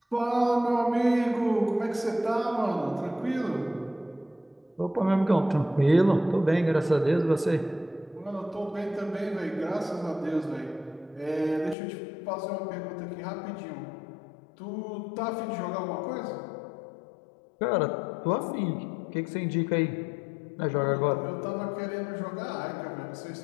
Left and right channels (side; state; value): right; drops out; at 11.8 s